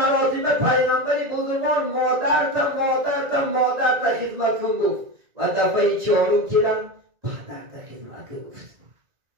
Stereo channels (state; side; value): late; left; 1.9 ms